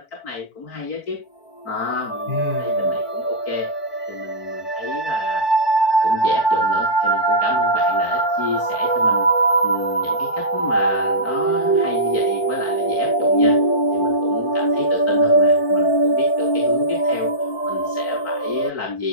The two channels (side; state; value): right; late; 4.5 ms